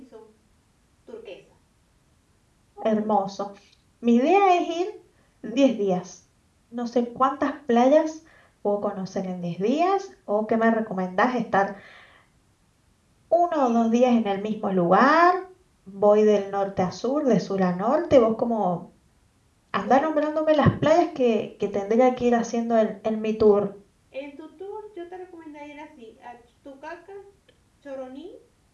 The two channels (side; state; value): both; identical; correlation 1.00